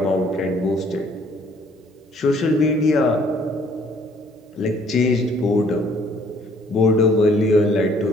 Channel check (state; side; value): normal; both; correlation 0.61